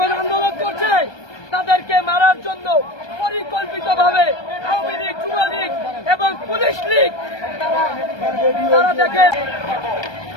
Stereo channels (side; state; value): right; late; 1.2 ms